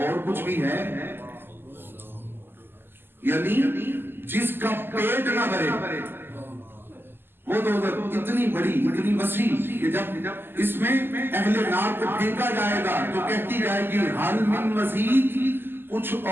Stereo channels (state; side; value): late; left; 0.10 ms